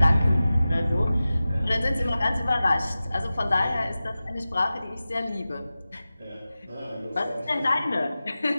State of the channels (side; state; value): both; inverted; correlation -0.95